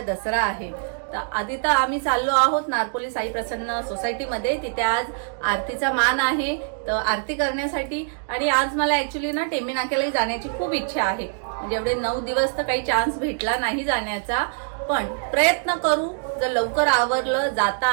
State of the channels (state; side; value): silent; left; digital silence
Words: दसरा आहे. तर आधी तर आम्ही चाललो आहोत नारपोली साई प्रसन्न सोसायटीमध्ये. तिथे आज आरतीचा मान आहे, तर आरती करण्यासाठी. आणि आज मला ऍक्च्युली ना टेंबी नाक्यालाही जाण्याची खूप इच्छा आहे. म्हणजे एवढे 9 दिवस तर काही चान्स भेटला नाही जाण्याचा, पण प्रयत्न करू. जर लवकर आवरलं, जाता